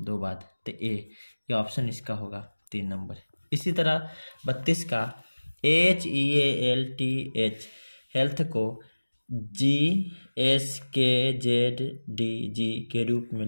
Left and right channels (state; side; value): inverted; both; correlation -1.00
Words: 2 बाद तो A। ये ऑप्शन इसका होगा 3 नंबर। इसी तरह 32 का HEALTH हेल्थ को GSKZDG के रूप में